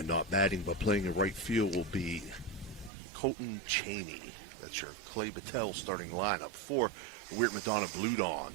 not batting but playing in right field will be Colton Cheney. That's your Clay Battelle starting lineup. For Weird Madonna Blue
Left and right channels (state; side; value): drops out; left; at 2.9 s